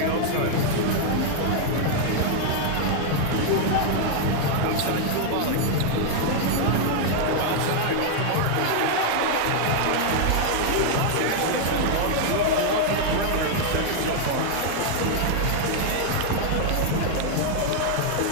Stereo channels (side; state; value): both; different; correlation 0.00